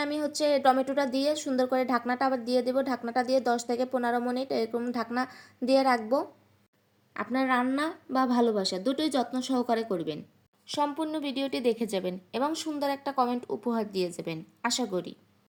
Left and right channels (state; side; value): identical; both; correlation 1.00